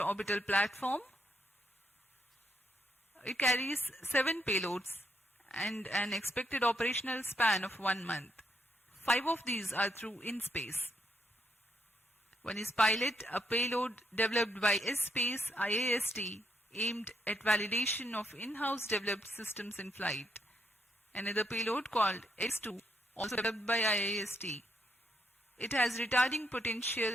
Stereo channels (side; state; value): both; normal; correlation 0.77